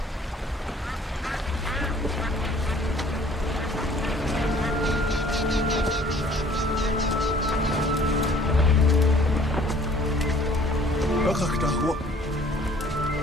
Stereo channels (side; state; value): both; normal; correlation 0.55